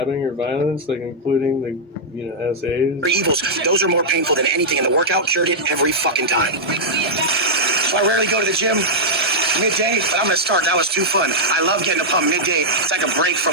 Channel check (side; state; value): both; normal; correlation -0.08